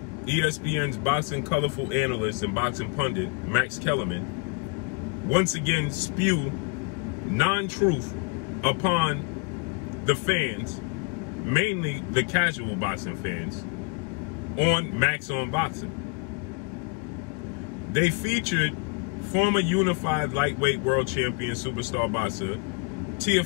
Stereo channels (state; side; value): quieter; right; 31.9 dB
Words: ESPN's boxing colorful analyst and boxing pundit, Max Kellerman, once again spew non-truth upon the fans, mainly the casual boxing fans, on Max on Boxing. They featured former unified lightweight world champion superstar boxer